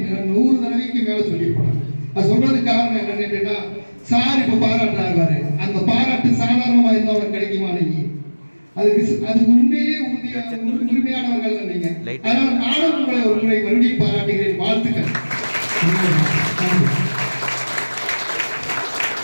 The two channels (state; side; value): inverted; both; correlation -1.00